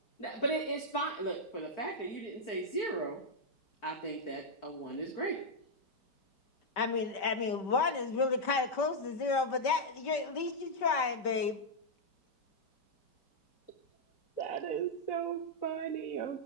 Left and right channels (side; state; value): right; late; 5.2 ms